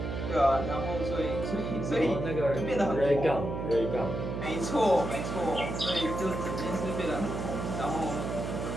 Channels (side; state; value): right; noise; hum, 4 dB below the sound